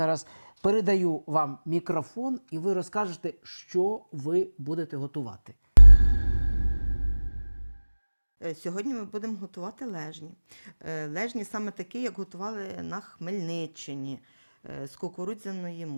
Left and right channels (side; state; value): both; inverted; correlation -1.00